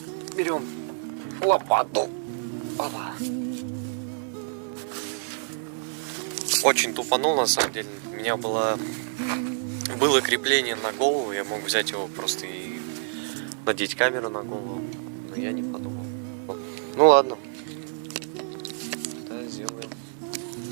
Берем лопату. Опа. Очень тупанул, на самом деле. У меня было крепление на голову, я мог взять его просто и надеть камеру на голову, но я не подумал. Ну ладно. Да, сделаем.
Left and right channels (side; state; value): left; silent; digital silence